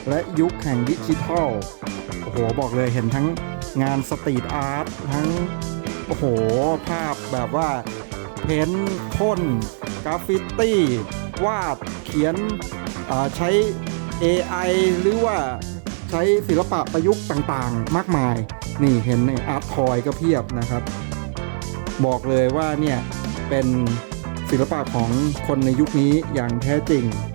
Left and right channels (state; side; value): silent; left; 60 dB below the other